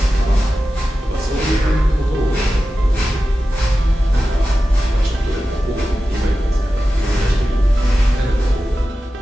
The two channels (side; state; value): both; normal; correlation 0.93